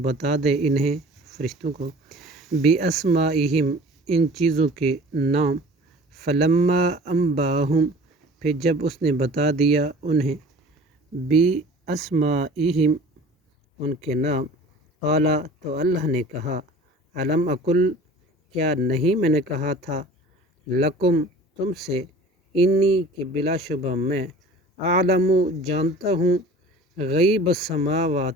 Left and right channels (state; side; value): normal; both; correlation 0.44